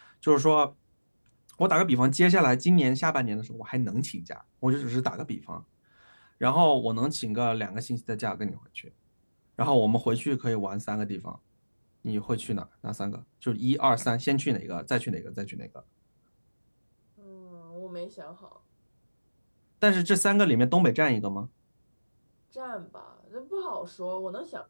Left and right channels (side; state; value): both; inverted; correlation -1.00